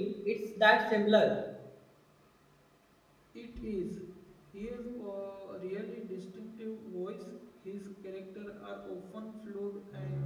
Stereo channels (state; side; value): identical; both; correlation 1.00